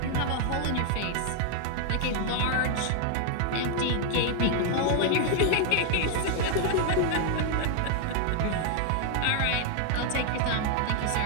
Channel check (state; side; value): different; both; correlation 0.00